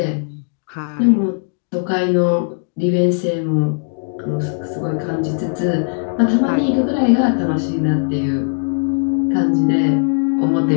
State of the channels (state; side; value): silent; right; 67 dB below the other